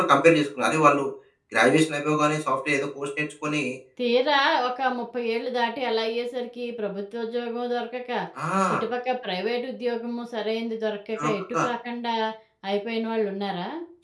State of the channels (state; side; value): identical; both; correlation 1.00